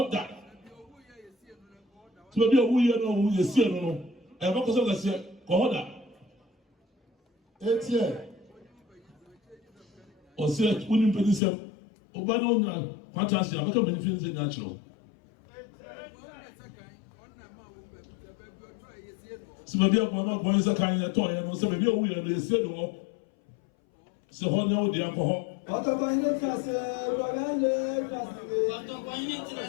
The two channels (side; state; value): right; drops out; at 11.4 s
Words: that. So maybe a wee no, you see, no, and what was I say? Kohoda. 8 years. Or say, wouldn't pay this up. Obano, fantastic. I'm not going to finish natural. So maybe I'm not going to Sakan at all, and so maybe a wee and you say no. So, how now the alcohol?